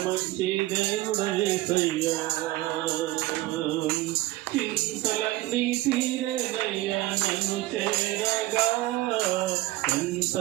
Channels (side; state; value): left; quieter; 18.0 dB